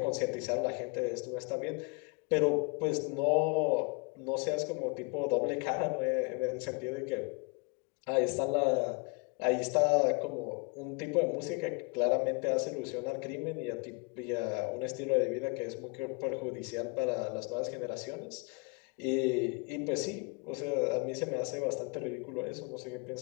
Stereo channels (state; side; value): quieter; right; 32.0 dB